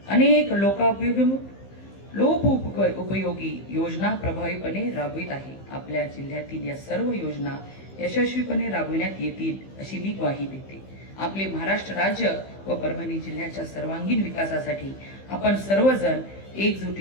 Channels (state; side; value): late; right; 15 ms